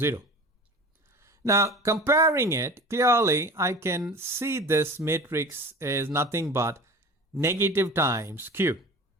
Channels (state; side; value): normal; both; correlation 0.37